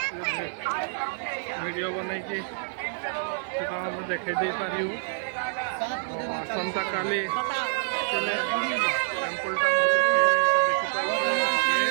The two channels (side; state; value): left; silent; digital silence